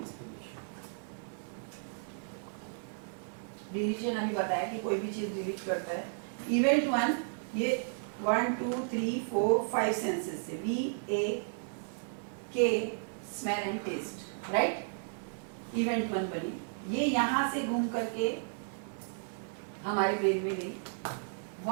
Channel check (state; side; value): silent; left; digital silence